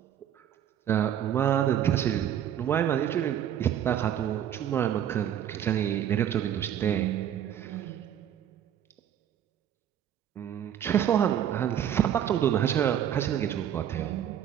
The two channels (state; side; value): quieter; left; 10.1 dB